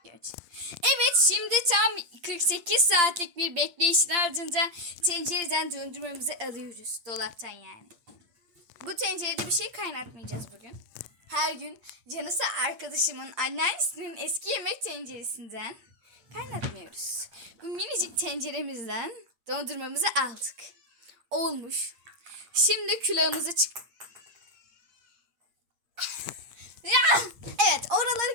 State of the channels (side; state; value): left; late; 8.6 ms